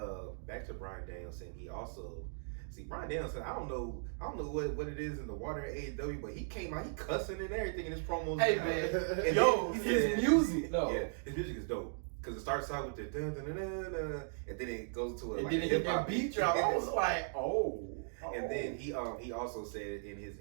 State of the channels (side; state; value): left; silent; digital silence